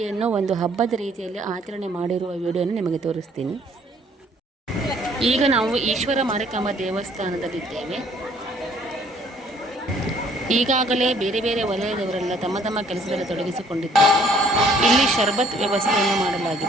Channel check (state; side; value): normal; both; correlation 0.61